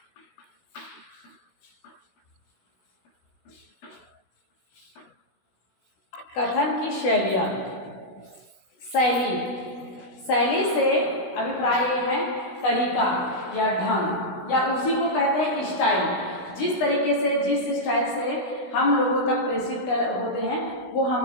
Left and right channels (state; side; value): late; right; 16 ms